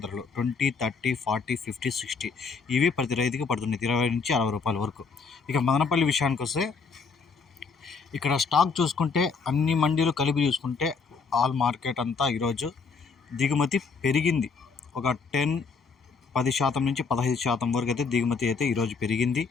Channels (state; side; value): quieter; right; 5.0 dB